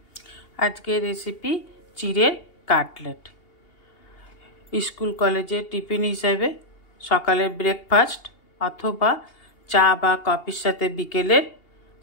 आजके रेसिपि चिड़ेर काटलेट स्कूल कलेजे टिफिन हिसेबे सकाले ब्रेकफास्ट अथवा चा बा कफिर साथे बिकेलेर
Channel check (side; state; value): right; late; 2.8 ms